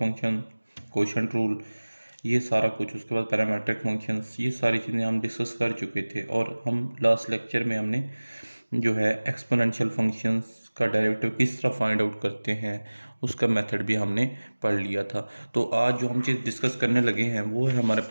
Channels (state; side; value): inverted; both; correlation -1.00